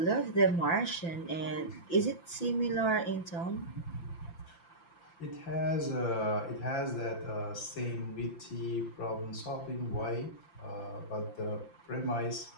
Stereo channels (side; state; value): right; late; 5.9 ms